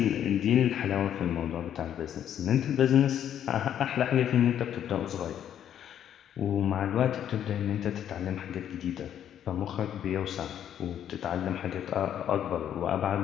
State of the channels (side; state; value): right; quieter; 10.0 dB